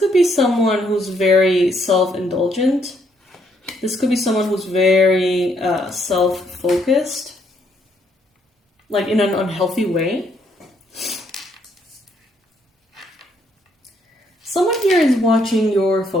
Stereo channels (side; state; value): both; normal; correlation 0.71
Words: be someone who's very self-indulgent. This could be someone who's very self-focused, like in an unhealthy way. Someone here is watching your